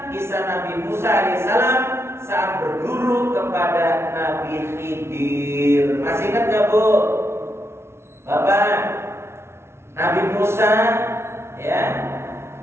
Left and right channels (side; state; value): left; late; 0.12 ms